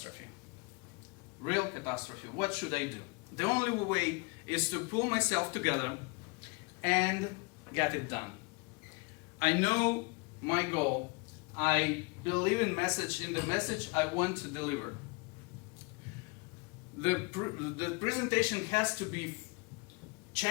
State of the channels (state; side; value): quieter; right; 30.8 dB